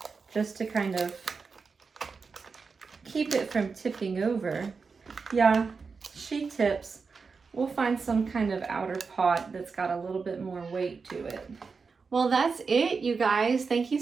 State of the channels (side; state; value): left; quieter; 4.9 dB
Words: just to kind of keep it from tipping over. Yeah, she tips. We'll find some kind of outer pot that's got a little bit more weight to it. Well, that's it, you guys. Thank you